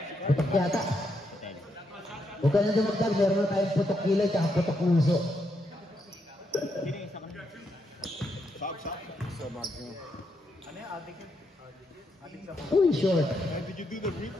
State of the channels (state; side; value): normal; both; correlation 0.80